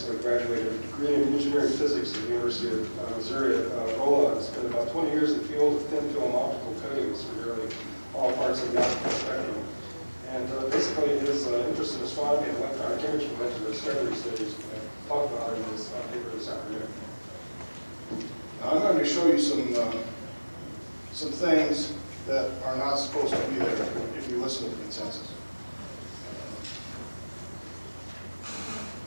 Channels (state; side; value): inverted; both; correlation -1.00